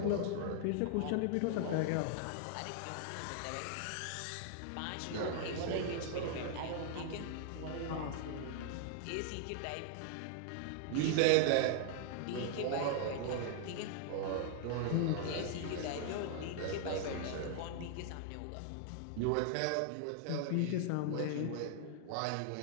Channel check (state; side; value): different; both; correlation 0.00